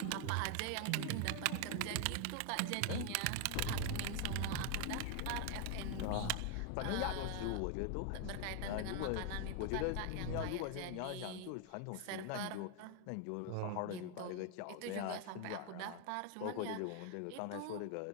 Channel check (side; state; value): both; different; correlation 0.00